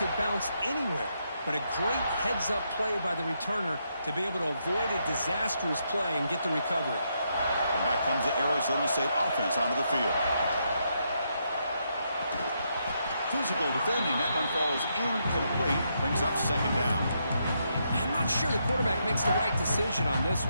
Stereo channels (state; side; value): inverted; both; correlation -0.79